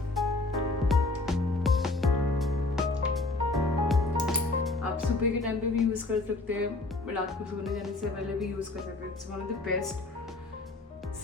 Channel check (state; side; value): quieter; right; 3.1 dB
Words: आप सुबह के टाइम पे भी यूज कर सकते हैं, रात को सोने जाने से पहले भी यूज कर सकते हैं। It's one of the best